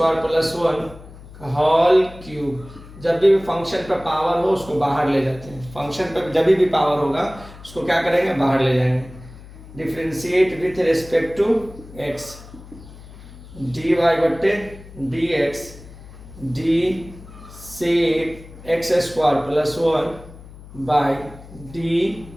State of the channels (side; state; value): left; noise; hum, 18 dB below the sound